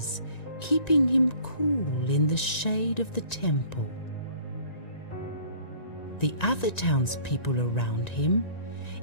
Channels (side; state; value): right; late; 1.9 ms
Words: keeping him cool in the shade of the temple. The other townspeople around him